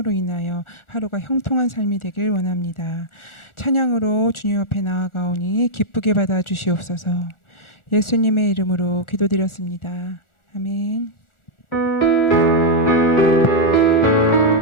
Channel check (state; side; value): late; right; 1.4 ms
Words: 인하여 하루가 형통한 삶이 되길 원합니다. 찬양으로 주님 앞에 나아가오니 기쁘게 받아 주시옵소서. 예수님의 이름으로 기도드렸습니다. 아멘.